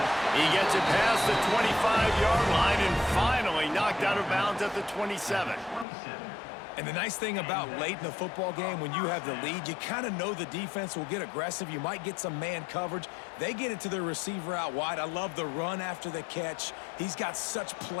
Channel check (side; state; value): right; drops out; at 5.9 s